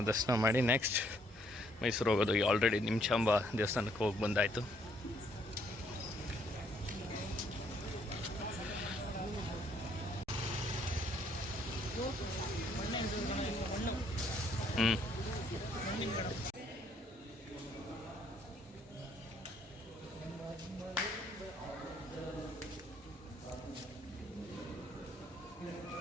ದರ್ಶನ ಮಾಡಿ ನೆಕ್ಸ್ಟ್ ಮೈಸೂರು ಹೋಗೋದು. ಆಲ್ರೆಡಿ ನಿಮಿಷಾಂಬ ದೇವಸ್ಥಾನಕ್ಕೆ ಹೋಗಿ ಬಂದಾಯಿತು.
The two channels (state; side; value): normal; both; correlation 0.67